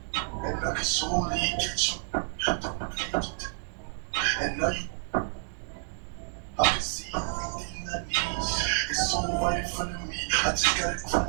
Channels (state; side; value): silent; left; digital silence